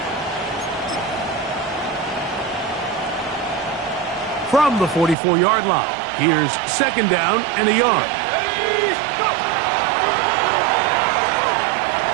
from the 44-yard line. Here's second down and a yard.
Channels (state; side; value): drops out; left; at 5.2 s